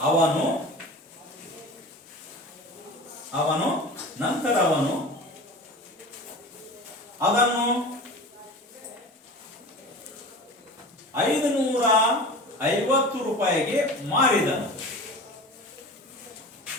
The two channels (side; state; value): both; normal; correlation 0.36